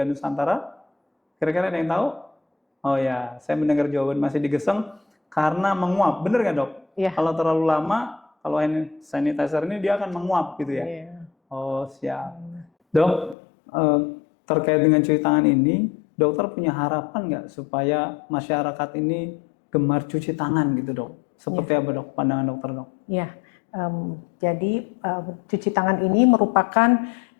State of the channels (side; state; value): right; drops out; at 13.4 s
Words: Nusantara? Kira-kira ada yang tahu? Oh ya, saya mendengar jawaban Mas Edi Geseng karena menguap. Bener nggak dok? Ya. Kalau terlalu lama, kalau hand sanitizer ini dia akan menguap gitu ya? Ya. Oh siap. Dok, terkait dengan cuci tangan ini, dokter punya harapan nggak supaya masyarakat ini gemar cuci tangan gitu dok? Seperti apa dok pandangan dokter dok? Ya, jadi cuci tangan ini merupakan